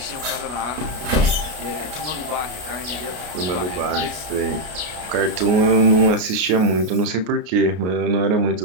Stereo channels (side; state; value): left; late; 33 ms